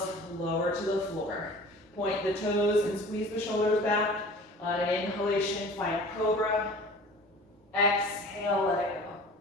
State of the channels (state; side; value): normal; both; correlation 0.43